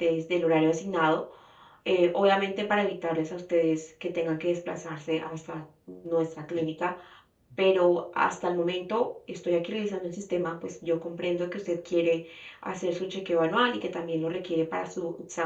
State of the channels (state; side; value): identical; both; correlation 1.00